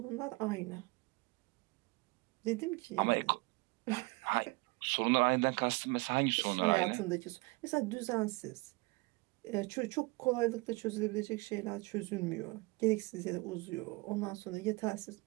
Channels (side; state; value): left; quieter; 25.4 dB